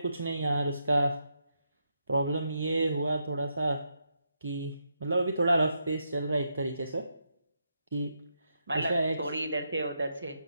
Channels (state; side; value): inverted; both; correlation -0.82